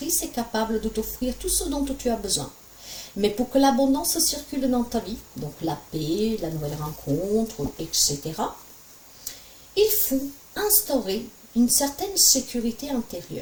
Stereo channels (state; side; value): identical; both; correlation 1.00